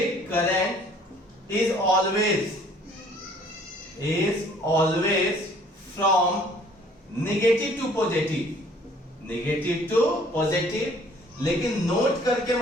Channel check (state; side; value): normal; both; correlation 0.56